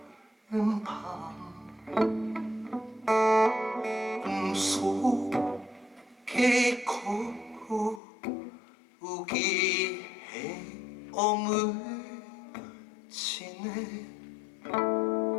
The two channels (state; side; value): drops out; right; at 8.0 s